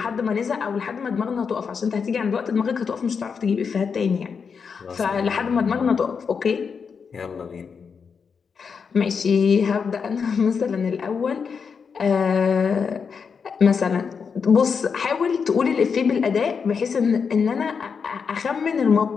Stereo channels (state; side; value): quieter; right; 6.0 dB